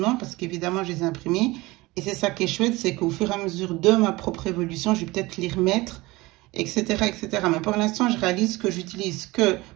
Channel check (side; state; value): left; quieter; 21.1 dB